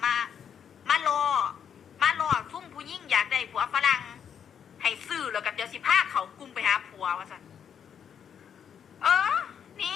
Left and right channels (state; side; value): quieter; right; 8.0 dB